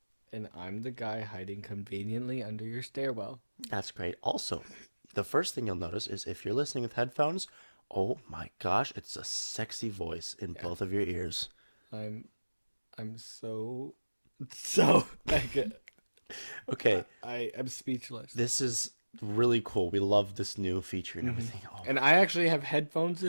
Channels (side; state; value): both; inverted; correlation -1.00